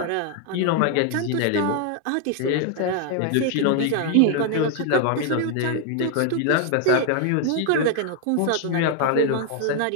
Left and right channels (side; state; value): both; different; correlation 0.00